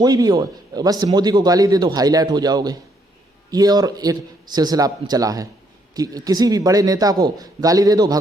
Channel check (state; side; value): normal; both; correlation 0.72